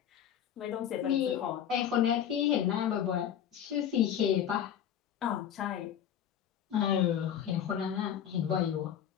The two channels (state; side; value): quieter; right; 9.6 dB